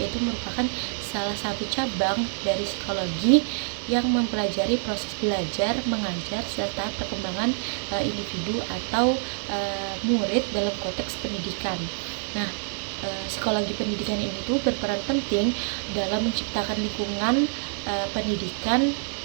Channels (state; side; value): silent; left; 59 dB below the other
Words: merupakan salah satu cabang dari psikologi yang mempelajari proses belajar, mengajar, serta perkembangan individu atau murid dalam konteks pendidikan. Nah, psikologi pendidikan ini tuh berperan penting dalam menciptakan lingkungan pendidikan